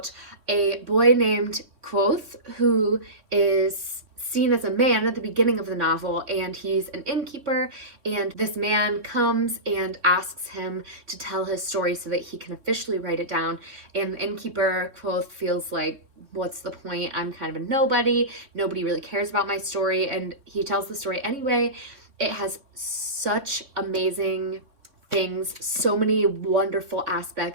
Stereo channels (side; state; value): left; late; 3.6 ms